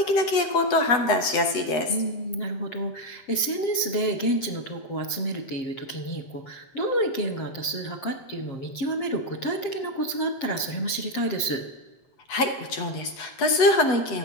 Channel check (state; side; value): late; right; 7.5 ms